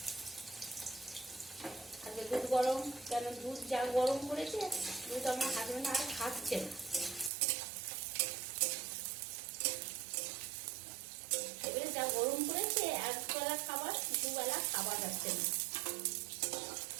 আজকে দুধ গরম, কেন দুধ যা গরম করেছে, দুধ আমার হাজবেন্ড আর খাচ্ছে না। এবারে যা গরম করেছে, একবেলা খাবার দুবেলা খাওয়া যাচ্ছে না।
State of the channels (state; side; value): drops out; left; at 7.3 s